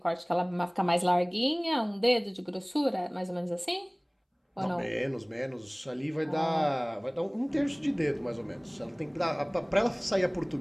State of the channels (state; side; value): identical; both; correlation 1.00